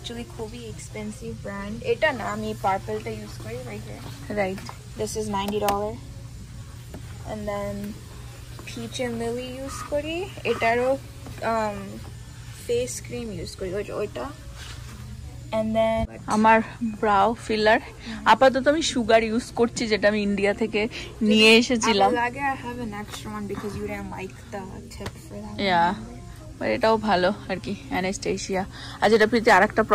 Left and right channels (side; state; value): both; identical; correlation 1.00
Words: খুবই এক্সপেন্সিভ ব্র্যান্ড। এটা না, আমি পার্পলটা ইউজ করি right here. Right, this is $90 and then Peach and Lily use করি, এটারও ফেস ক্রিম ইউজ করি ওইটা। And then আমার ব্রাউ ফিলার আপাতত আমি সুগার ইউজ করছি, যেটা আমি ইন্ডিয়া থেকে নিয়ে এসেছিলাম। লাগে I have an extra one because you didn't like the tip for that. Yeah, but এটাও ভালো আর কি, অ্যানাস্টেশিয়া। আর যেটা প্রীতি আরেকটা